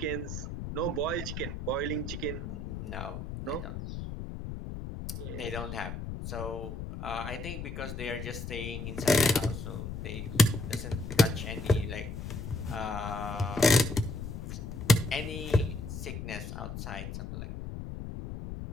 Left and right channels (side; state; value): left; noise; rumble, 7 dB below the sound